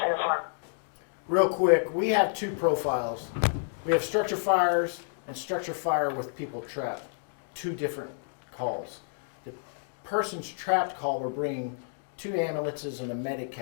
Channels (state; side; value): silent; right; digital silence